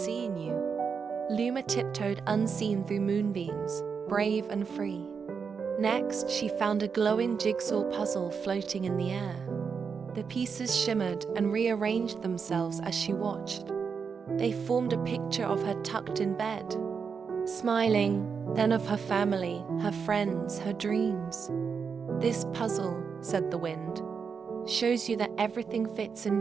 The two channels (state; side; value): quieter; left; 6.0 dB